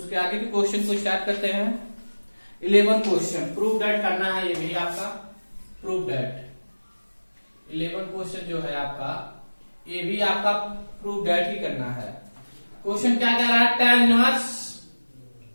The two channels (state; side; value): inverted; both; correlation -1.00